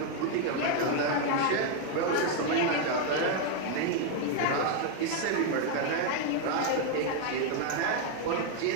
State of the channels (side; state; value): both; different; correlation 0.01